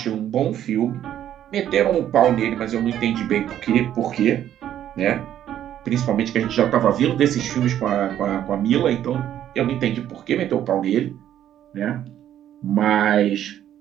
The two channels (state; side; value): quieter; left; 11.0 dB